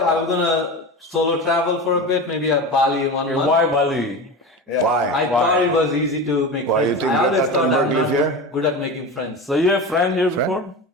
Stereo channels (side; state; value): both; normal; correlation 0.26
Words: was gonna solo travel for a bit, maybe a Bali in 1 month. Why Bali? Why? I thought it was easy to make Why, you friends. think I always that thought I'm Attenberg live not here? good at making friends. So you have friend here before?